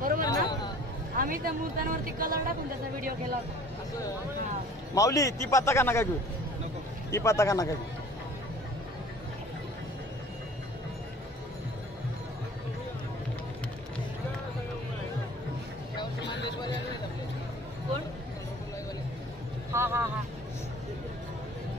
ना आम्ही त्या मूर्त्यांवरती कलर टाकून त्याचा व्हिडिओ केला होता माऊली ती पत्ता का नका घेऊ ती पत्ता का नका घेऊ कोण हा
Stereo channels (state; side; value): normal; both; correlation 0.48